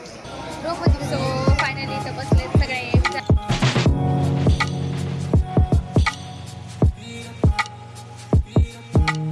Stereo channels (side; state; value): both; identical; correlation 1.00